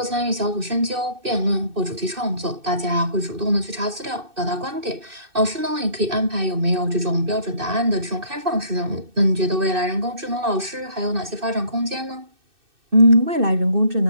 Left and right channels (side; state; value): left; late; 2.6 ms